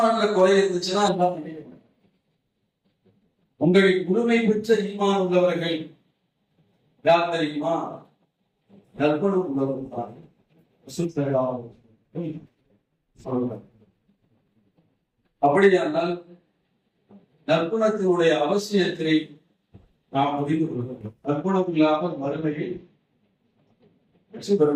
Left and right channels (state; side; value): identical; both; correlation 1.00